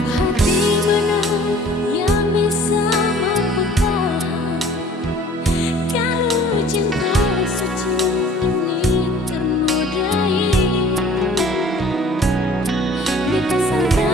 Hati mana yang bisa mampu tahan kalau cinta suci ini ternodai. Beta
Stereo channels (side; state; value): both; normal; correlation 0.52